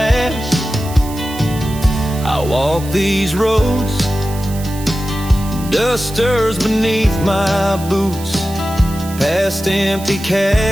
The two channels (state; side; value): noise; right; hiss, 15 dB below the sound